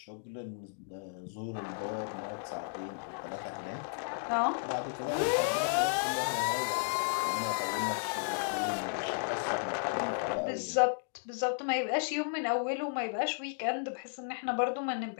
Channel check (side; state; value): right; silent; digital silence